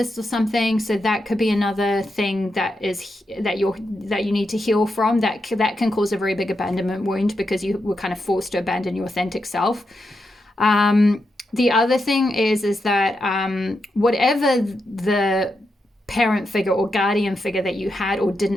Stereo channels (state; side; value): normal; both; correlation 0.85